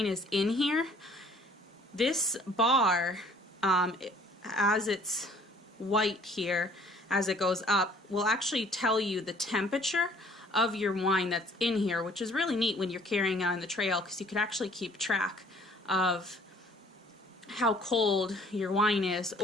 is in here, this bar, as it's white here, as it goes up, will actually tell you the temperature of your wine that's in here, which is really neat when you're carrying it on the trail, because you can actually keep track of how cold your wine is,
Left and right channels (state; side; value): normal; both; correlation 0.56